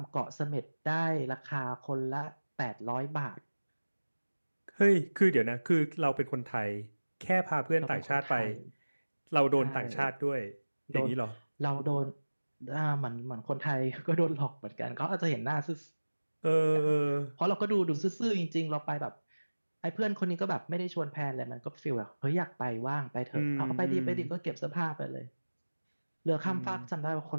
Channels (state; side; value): inverted; both; correlation -1.00